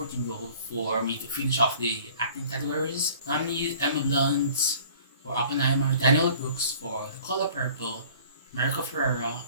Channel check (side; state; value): both; inverted; correlation -0.50